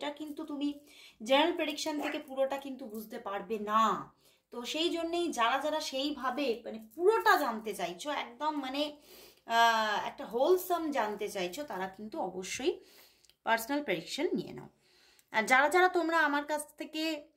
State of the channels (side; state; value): both; identical; correlation 1.00